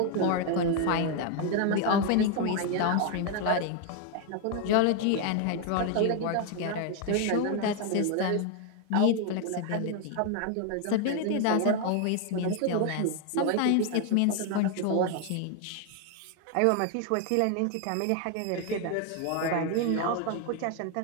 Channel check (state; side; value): different; both; correlation 0.01